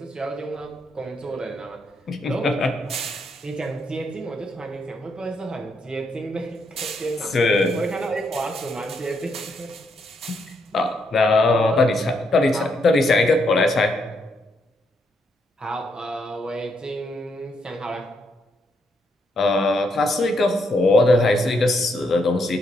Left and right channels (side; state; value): both; normal; correlation 0.77